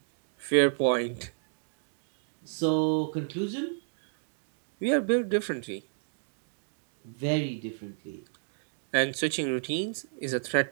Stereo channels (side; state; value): left; silent; digital silence